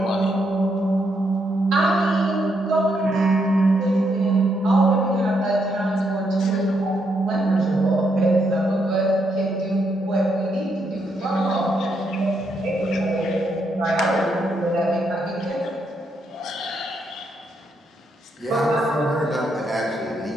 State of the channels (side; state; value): both; normal; correlation 0.78